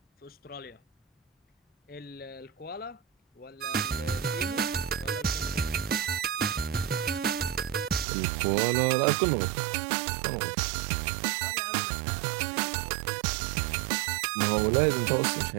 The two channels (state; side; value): drops out; left; at 8.1 s